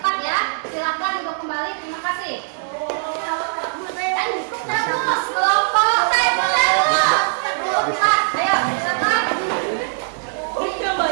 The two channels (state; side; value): silent; left; digital silence